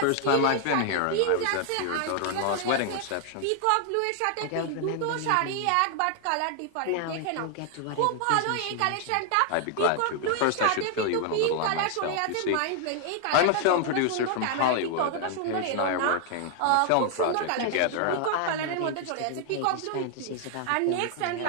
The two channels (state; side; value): different; both; correlation 0.00